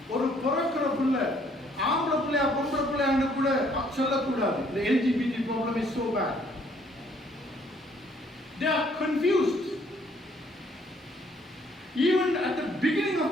ஒரு பிறக்கிற பிள்ளை ஆம்பளை பிள்ளையா பொம்பளை பிள்ளையான்னு கூட சொல்லக்கூடாது. The LGBT problem is so bad. They are confused. Even at the beginning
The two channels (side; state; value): both; normal; correlation 0.64